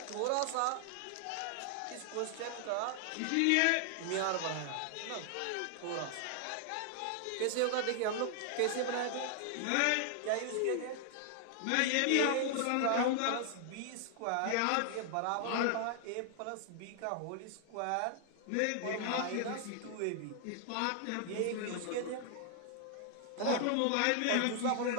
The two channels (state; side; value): different; both; correlation 0.00